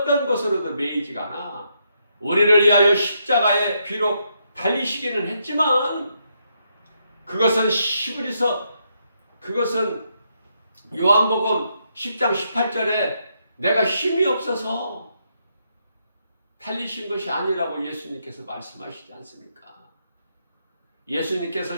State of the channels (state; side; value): inverted; both; correlation -0.78